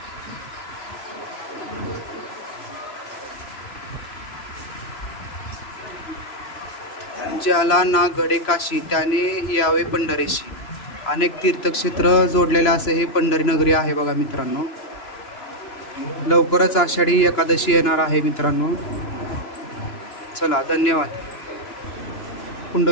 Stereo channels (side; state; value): right; late; 3.0 ms